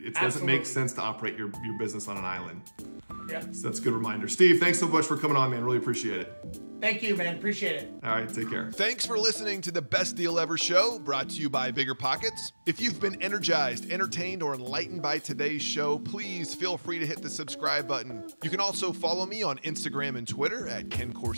doesn't make sense to operate your business on an island. Yeah. So that's a good reminder. Steve, thanks so much for coming on, man. Really appreciate it. Thank you, man. Appreciate it. All right, take care. Thanks for listening to the Best Deal Ever show, brought to you by BiggerPockets. If you've been energized, entertained, or enlightened by today's show, please feel free to hit the subscribe button. You can also follow me on Instagram and Twitter at Ken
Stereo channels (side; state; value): both; inverted; correlation -1.00